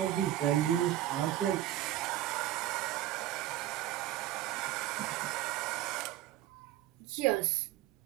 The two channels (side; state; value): left; quieter; 13.4 dB